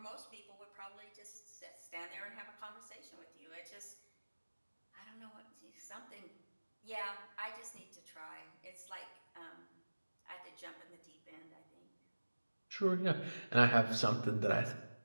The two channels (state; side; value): inverted; both; correlation -1.00